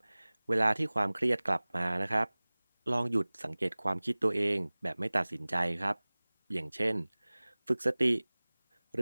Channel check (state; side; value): inverted; both; correlation -1.00